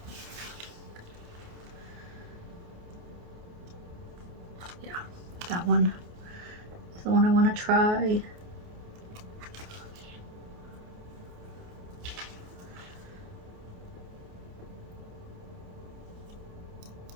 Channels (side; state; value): left; late; 28 ms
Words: Yeah, that one is the one I want to try.